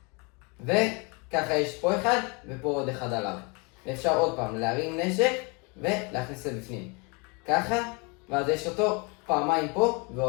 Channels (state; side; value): quieter; right; 30.6 dB